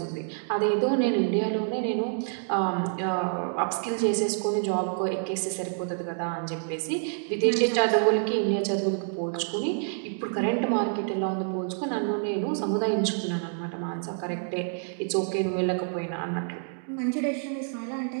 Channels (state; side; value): silent; left; digital silence